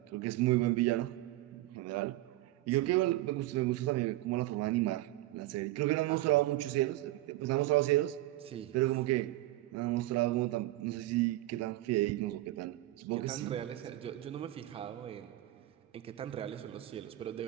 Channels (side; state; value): left; quieter; 16.8 dB